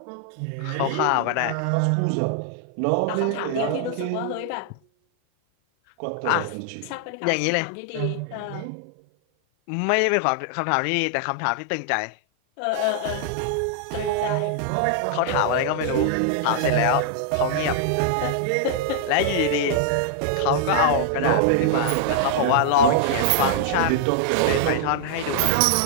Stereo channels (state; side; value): different; both; correlation -0.01